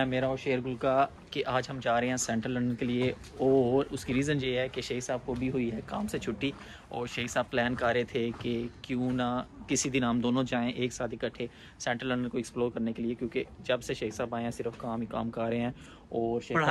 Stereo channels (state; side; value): identical; both; correlation 1.00